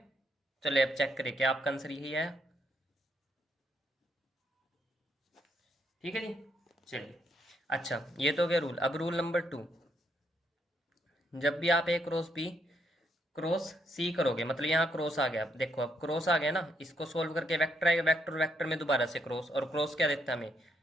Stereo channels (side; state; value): both; normal; correlation 0.75